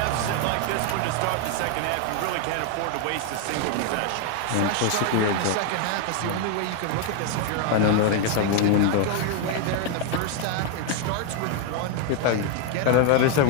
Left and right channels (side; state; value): both; different; correlation 0.01